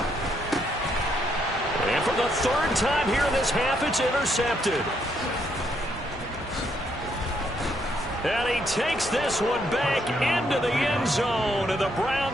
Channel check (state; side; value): normal; both; correlation 0.74